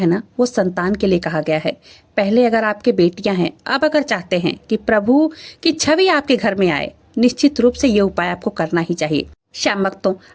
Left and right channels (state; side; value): identical; both; correlation 1.00